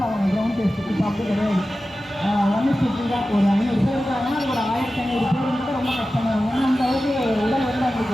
ஆவாங்க கிரவுண்ட் டெஸ்ட். இப்போ அப்படி கிடையாது. 1:50 தான். ஒரு 500 பேர் இருக்காங்கன்னா அது ஒரு 1500 பேர் வந்து ரொம்ப கஷ்டமாக இருக்கும். ஏன்னா அந்த அளவுக்கு உடல் வந்து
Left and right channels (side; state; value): both; normal; correlation 0.94